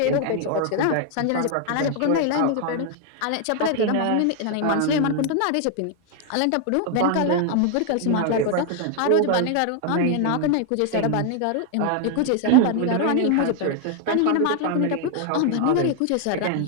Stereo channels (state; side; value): different; both; correlation 0.00